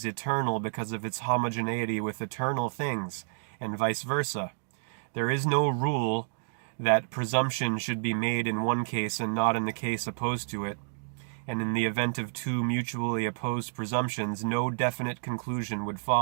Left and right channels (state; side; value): silent; left; digital silence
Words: eternal because of its homogeneity with eternal things, and vice versa. There is no rule that presumption should be made in one case and not in the case opposed to it, and in the event of 2 mutually opposed presumptions, no definite conclusion would